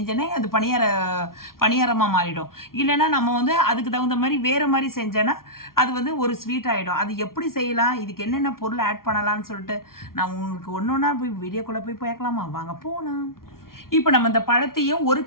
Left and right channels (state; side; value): late; right; 0.93 ms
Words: அது பணியாரமாக மாறிடும். இல்லைன்னா நம்ம அதுக்கு தகுந்த மாதிரி வேறு மாதிரி செஞ்சேன்னா அது ஒரு ஸ்வீட் ஆகிடும். அது எப்படி செய்யலாம், இதுக்கு என்னென்ன பொருள் ஆட் பண்ணலான்னு சொல்லிட்டு நான் உங்களுக்கு ஒன்று ஒன்றா போய் வீடியோக்குள்ளே போய் பார்க்கலாமா? வாங்க போகலாம். இப்போ நம்ம இந்த பழத்தையும் ஒரு